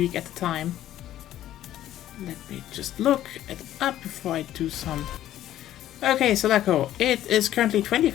at a time. Let me just look it up before I do some. Okay, Selaco, it is currently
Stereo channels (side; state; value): right; quieter; 12.7 dB